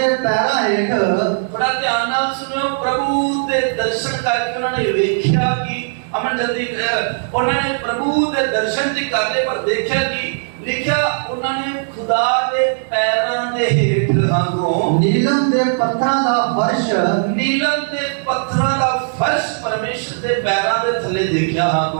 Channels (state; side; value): silent; left; digital silence